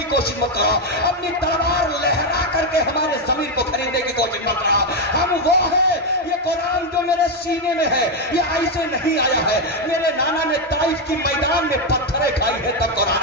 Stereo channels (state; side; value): normal; both; correlation 0.04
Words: کوشش مت کرو، اپنی تلوار لہرا کر کے ہمارے ضمیر کو خریدنے کی کوشش مت کرو، ہم وہ ہے، یہ قرآن جو میرے سینے میں ہے یہ ایسے نہیں آیا ہے، میرے نانا نے طائف کی میدان میں پتھریں کھائی ہے تب